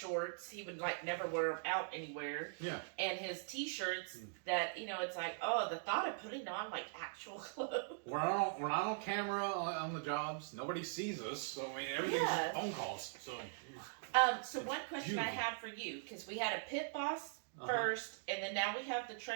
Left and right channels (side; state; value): left; silent; digital silence